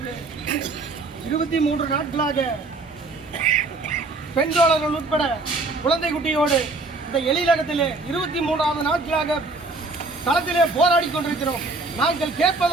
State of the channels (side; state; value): left; quieter; 3.3 dB